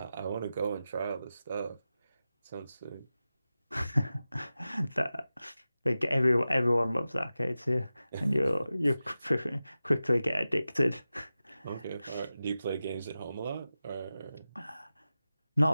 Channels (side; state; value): both; inverted; correlation -0.94